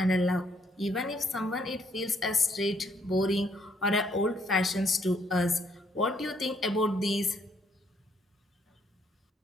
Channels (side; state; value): both; normal; correlation 0.70